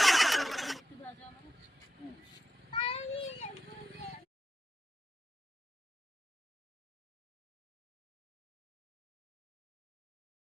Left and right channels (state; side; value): normal; both; correlation 0.87